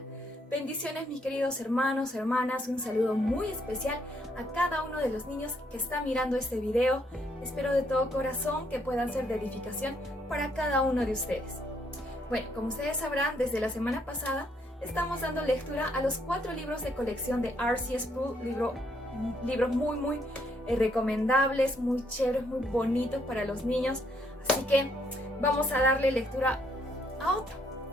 Bendiciones, mis queridos hermanos, hermanas. Un saludo muy especial a cada uno de los niños que está mirando este video. Espero de todo corazón que puedan ser de edificación para cada uno de ustedes. Bueno, como ustedes sabrán, desde la semana pasada estamos dando lectura a los 4 libros de colección de R.C. Sproul, libros muy recomendables, muy chéveres, muy bonitos para los niños. Así que vamos a darle lectura a otro.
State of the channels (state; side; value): normal; both; correlation 0.71